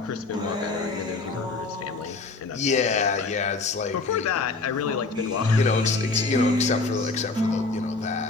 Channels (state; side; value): quieter; right; 3.8 dB